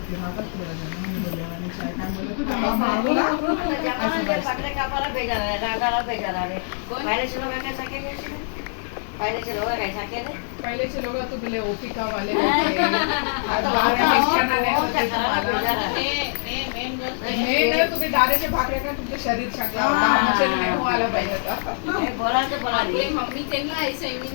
राहतात थोडा जण मी बोलले आणि काय काय बोलले तू त्यांना मागवला पहिलेचे लोक तू बोले ओपिका वाले होते आज बाहेर शिक्षणाने होते तुम्हाला नाही तुम्ही दारेचे भाकरे का तुमचं शरीर चांगलं होतं आमचे नाही हो आलं पाहिजे आता. आपली मम्मी त्यांना ऐसा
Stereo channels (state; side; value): silent; right; digital silence